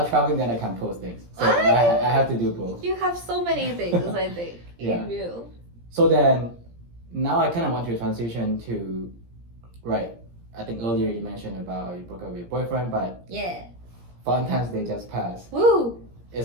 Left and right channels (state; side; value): late; left; 17 ms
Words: traveling, then I can post things. So I have to do both. You have so many things, I think. Yeah. You do. So then, now I kind of want to transition to, I think earlier you mentioned about you broke up with your boyfriend, but Valentine's Day just passed. Woo!